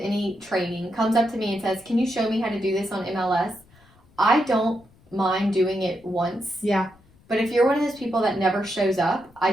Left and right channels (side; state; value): left; noise; rumble, 29 dB below the sound